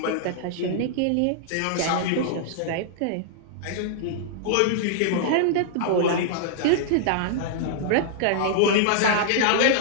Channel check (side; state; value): both; different; correlation -0.02